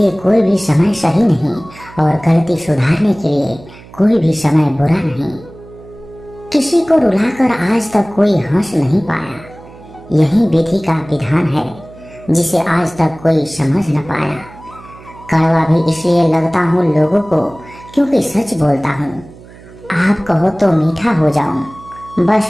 कोई भी समय सही नहीं, और गलती सुधारने के लिए कोई भी समय बुरा नहीं। किसी को रुलाकर आज तक कोई हंस नहीं पाया, यही विधि का विधान है जिसे आज तक कोई समझ न पाया। कड़वा भी इसलिए लगता हूँ लोगों को क्योंकि सच बोलता हूँ। आप कहो तो मीठा हो जाऊं, बस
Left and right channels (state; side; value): noise; right; hum, 20 dB below the sound